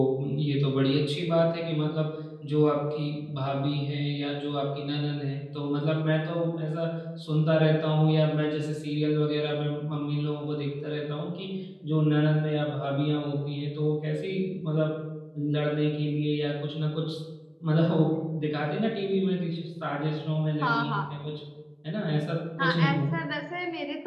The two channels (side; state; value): both; identical; correlation 1.00